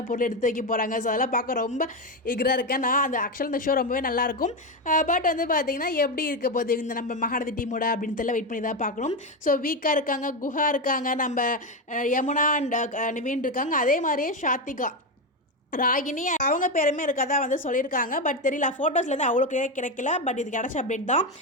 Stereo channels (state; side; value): normal; both; correlation 0.12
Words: பொருள் எடுத்து வைக்க போகிறாங்க. ஸோ அதெல்லாம் பார்க்க ரொம்ப ஈகராக இருக்கேன் நான். அந்த ஆக்சுவலாக இந்த ஷோ ரொம்பவே நல்லாயிருக்கும். பட் வந்து பார்த்திங்கன்னா எப்படி இருக்க போகுது இந்த நம்ம மகாநதி டீமோட அப்படின்னு தெரியல, வெயிட் பண்ணி தான் பார்க்கணும். ஸோ வீக்காக இருக்காங்க, குஹா இருக்காங்க, நம்ம யமுனா அண்ட் நிவீன் இருக்காங்க. அதே மாதிரியே ஷாத்திகா, ராகினி அவங்க பேருமே இருக்கதா வந்து சொல்லியிருக்காங்க. பட் தெரியல, ஃபோட்டோஸ்லேருந்து அவ்வளோ கிடைக்கல. பட் இது கிடச்ச அப்டேட் தான்.